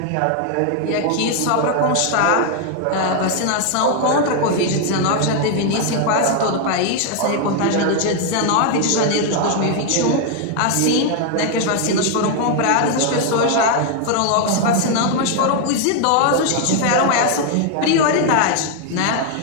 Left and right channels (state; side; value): different; both; correlation 0.01